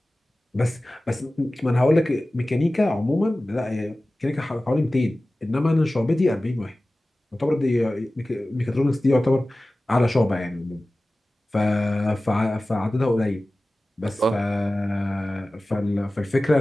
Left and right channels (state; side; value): normal; both; correlation 0.97